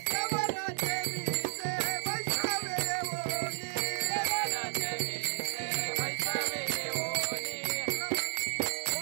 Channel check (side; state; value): left; silent; digital silence